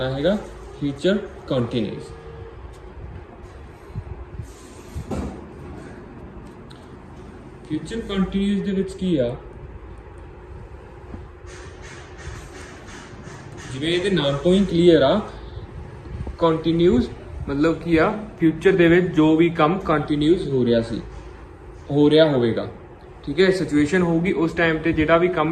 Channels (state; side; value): identical; both; correlation 1.00